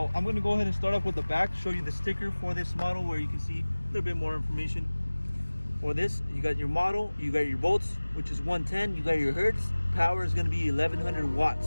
I'm going to go ahead and start off with the back, show you the sticker for this model where you can see a little bit more information. For this, you got your model, you got your volts, which is 110, you got your hertz, power is going to be 1100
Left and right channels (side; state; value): both; inverted; correlation -1.00